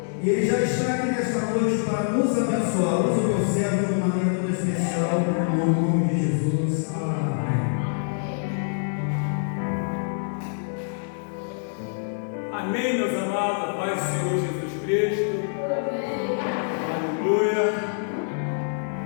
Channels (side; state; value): right; silent; 62 dB below the other